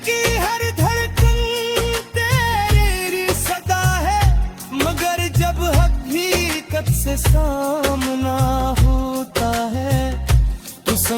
की हर धड़कन तेरी सदा है। मगर जब हकीकत से सामना होता है, तो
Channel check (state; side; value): identical; both; correlation 1.00